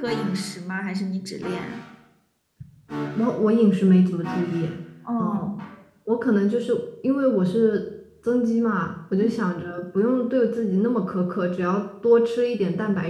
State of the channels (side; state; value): both; identical; correlation 1.00